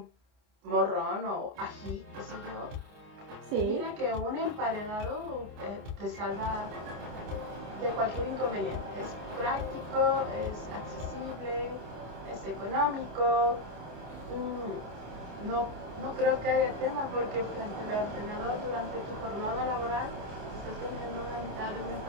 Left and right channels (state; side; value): late; left; 28 ms